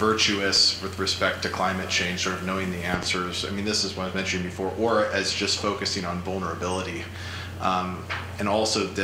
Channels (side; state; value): both; identical; correlation 1.00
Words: with respect to climate change, sort of knowing the answers. I mean, this is what I was mentioning before, or as just focusing on vulnerability. And also